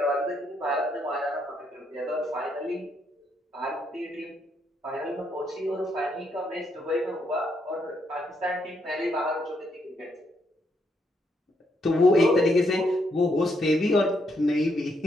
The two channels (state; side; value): normal; both; correlation 0.76